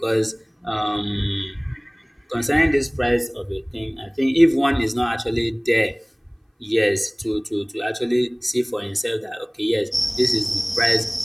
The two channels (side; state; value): both; identical; correlation 1.00